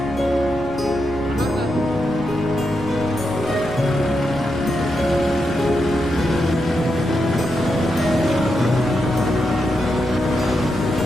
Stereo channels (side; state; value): both; normal; correlation 0.85